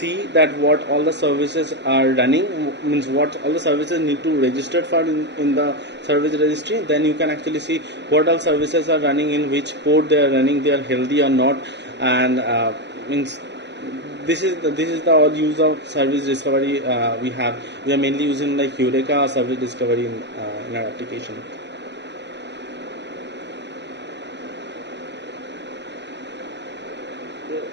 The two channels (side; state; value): left; late; 0.51 ms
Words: that what all the services are running, means what all the services need to register for in the service registry. Then you can actually see what all services are running, in which port they are running, they are healthy or not. And means this is the all use of service discovery. We are mainly using like Eureka service discovery in our application.